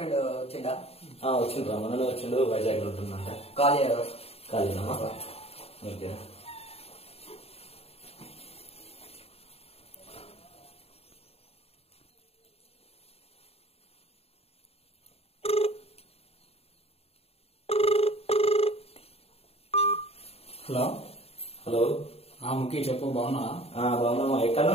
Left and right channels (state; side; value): late; right; 0.29 ms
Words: వచ్చిండా? వచ్చిండ్రా, మనలో వచ్చిండు. వైజాగ్ లో ఉంటుందంట. ఖాళీనా? ఓకే. Hello hello. ముఖ్య చెప్పు. బాగున్నా? బాగున్నామా. ఎక్కడ?